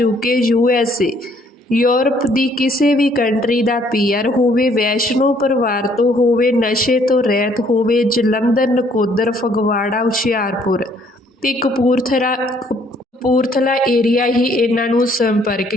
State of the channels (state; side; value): normal; both; correlation 0.64